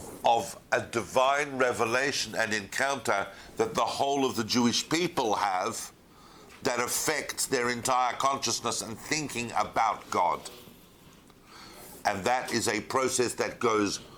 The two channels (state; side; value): identical; both; correlation 1.00